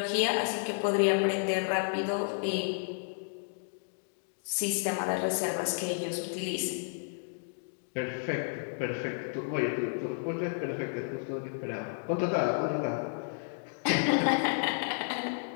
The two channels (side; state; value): right; silent; digital silence